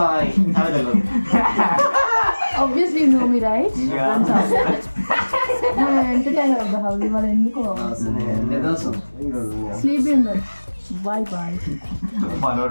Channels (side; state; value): both; inverted; correlation -1.00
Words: Obviously you know me, right? Yeah. I'm entertainer of the house. You are ఎందుకు sleep in the bye bye.